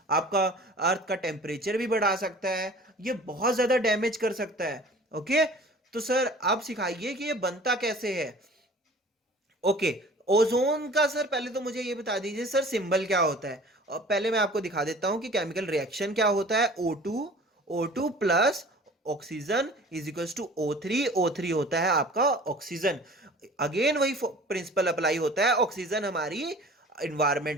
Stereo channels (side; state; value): both; normal; correlation 0.45